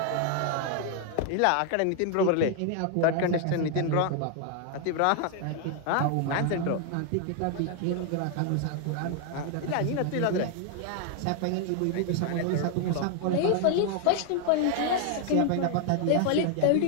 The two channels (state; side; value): different; both; correlation 0.00